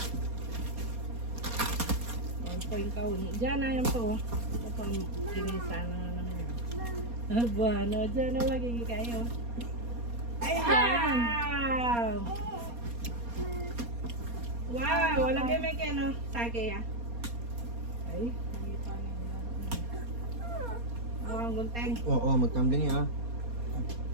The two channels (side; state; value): left; late; 4.2 ms